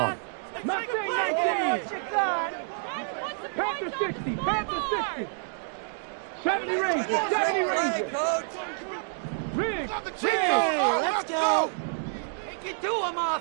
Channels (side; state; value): left; silent; digital silence